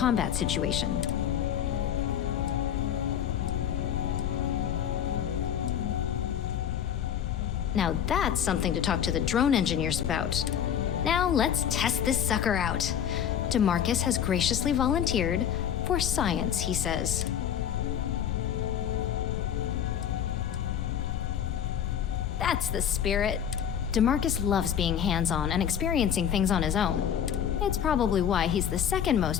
situation. Now that's something to talk to the drone engineers about. Now let's test this sucker out. DeMarcus has graciously volunteered for science, he says. That's the spirit. DeMarcus loves being hands-on and experiencing things on his own. It's probably why he's the second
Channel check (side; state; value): right; quieter; 9.2 dB